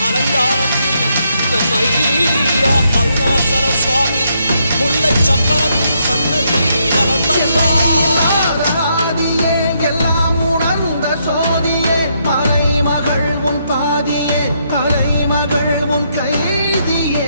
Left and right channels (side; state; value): both; inverted; correlation -0.76